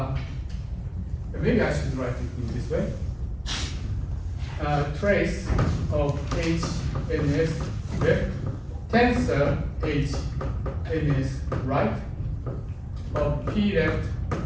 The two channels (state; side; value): identical; both; correlation 1.00